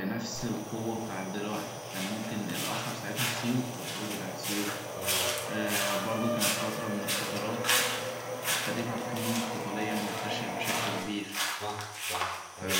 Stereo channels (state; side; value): identical; both; correlation 1.00